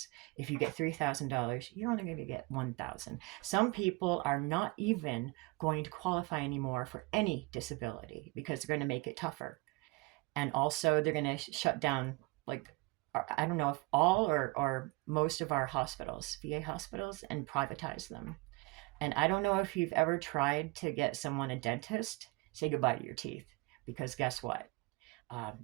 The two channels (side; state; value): left; quieter; 25.1 dB